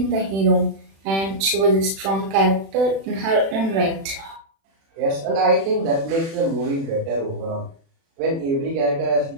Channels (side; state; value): left; late; 36 ms